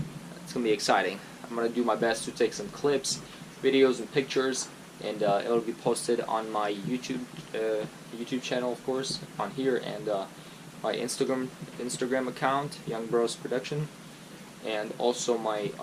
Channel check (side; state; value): both; identical; correlation 1.00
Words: it's gonna be exciting. I'm gonna do my best to take some clips, videos, and pictures, and it'll be posted on my YouTube channel, of course, on here, and my Instagram account, Young Bros Production, and also my